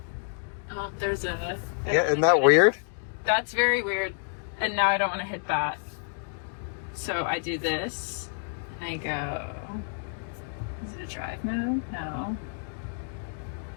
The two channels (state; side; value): silent; right; digital silence